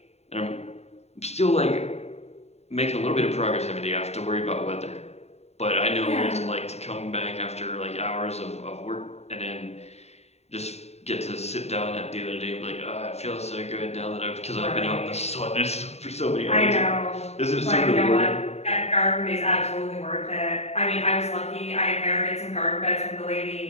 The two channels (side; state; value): right; late; 0.31 ms